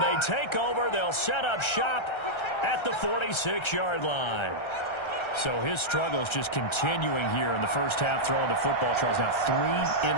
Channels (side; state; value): right; late; 1.3 ms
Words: they take over. They'll set up shop at the 46-yard line. So his struggles just continuing here in the first half, throwing the football. Charles, now 3